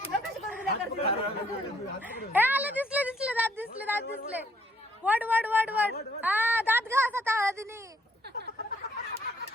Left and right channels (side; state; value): both; normal; correlation 0.67